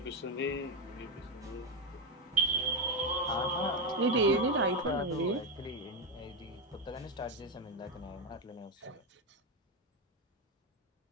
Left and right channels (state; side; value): normal; both; correlation 0.07